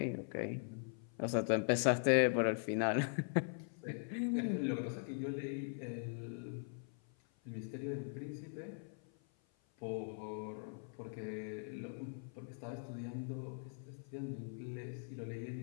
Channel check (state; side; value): silent; right; 50 dB below the other